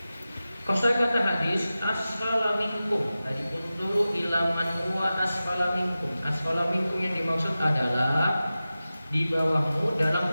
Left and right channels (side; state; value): both; inverted; correlation -0.95